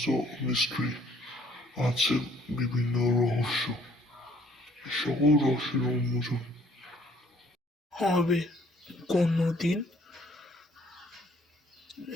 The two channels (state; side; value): normal; both; correlation 0.61